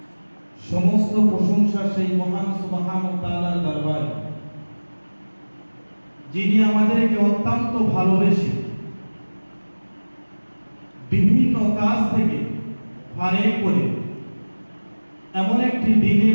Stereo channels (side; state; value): both; inverted; correlation -1.00